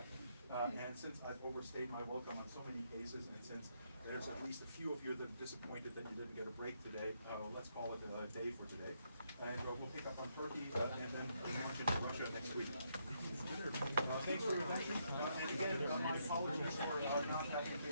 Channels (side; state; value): both; inverted; correlation -0.76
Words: And since I've overstayed my welcome on so many cases, and since there's at least a few of you that are disappointed that you didn't get a break today, let's call it a day for today. And we'll pick up on Turkey and then launch into Russia next week. Thanks for your attention. And again, my apologies for not having